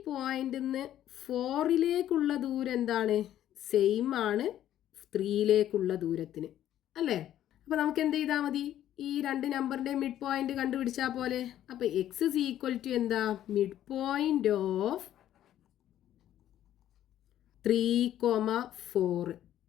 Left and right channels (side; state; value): right; quieter; 11.9 dB